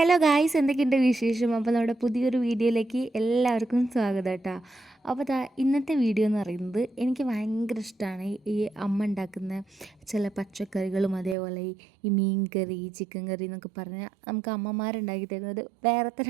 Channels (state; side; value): drops out; left; at 11.4 s